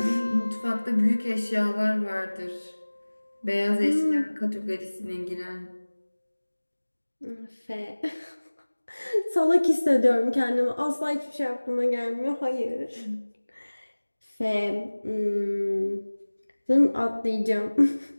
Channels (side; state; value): both; inverted; correlation -1.00